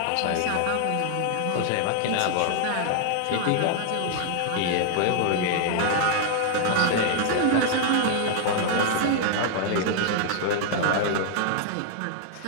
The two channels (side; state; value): both; different; correlation 0.00